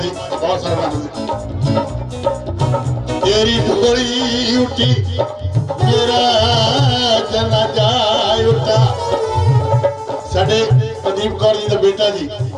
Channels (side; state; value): both; identical; correlation 1.00